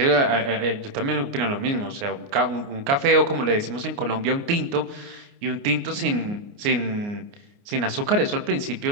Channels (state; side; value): late; left; 29 ms